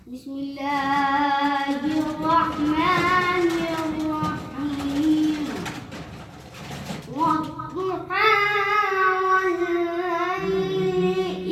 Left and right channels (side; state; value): both; identical; correlation 1.00